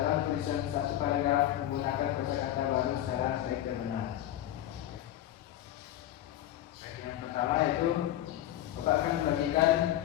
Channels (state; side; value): quieter; right; 13.0 dB